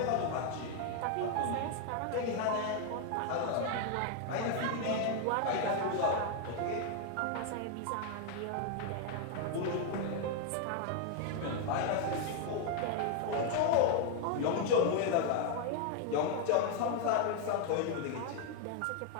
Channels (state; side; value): different; both; correlation 0.00